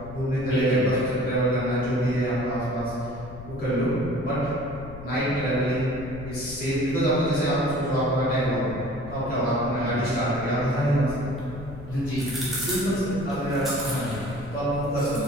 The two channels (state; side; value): noise; left; rumble, 13 dB below the sound